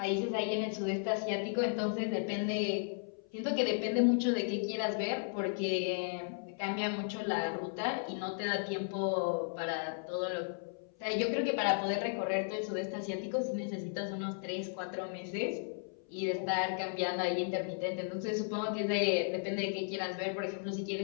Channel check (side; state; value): right; silent; 54 dB below the other